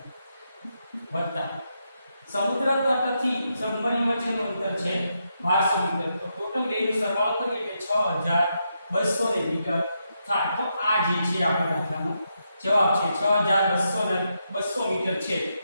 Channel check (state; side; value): inverted; both; correlation -0.82